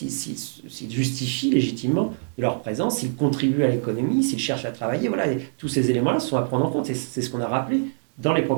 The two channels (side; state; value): left; silent; digital silence